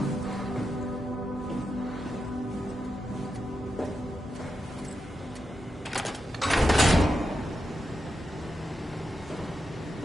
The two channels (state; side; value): normal; both; correlation 0.87